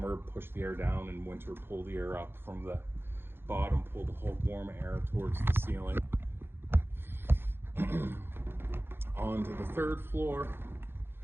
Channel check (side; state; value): left; late; 0.11 ms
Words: push the air down, in winter, pull the air up from the bottom, pull the whole warm air towards the ceiling. On to the third floor.